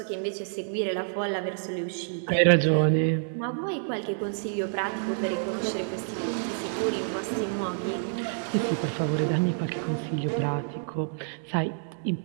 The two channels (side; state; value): left; silent; digital silence